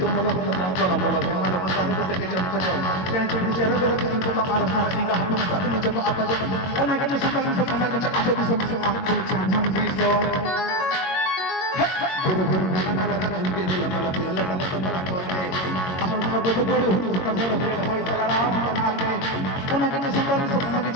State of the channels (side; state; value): right; late; 22 ms